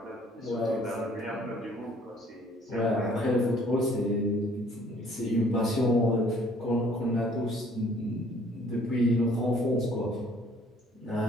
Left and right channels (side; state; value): both; normal; correlation 0.58